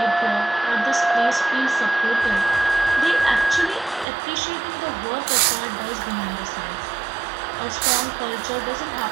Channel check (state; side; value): drops out; left; at 4.0 s